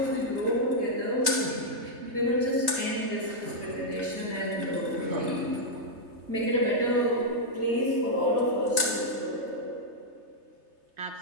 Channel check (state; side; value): late; left; 3.3 ms